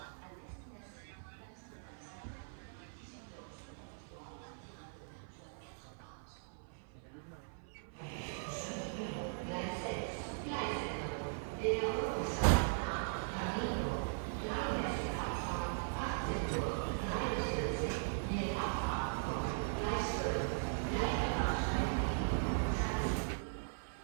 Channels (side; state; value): left; silent; 51 dB below the other